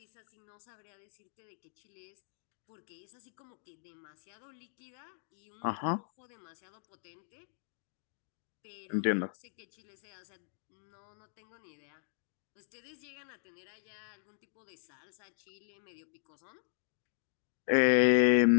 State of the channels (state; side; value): silent; right; digital silence